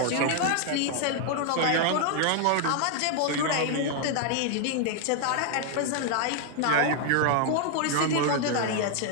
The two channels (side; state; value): both; different; correlation 0.00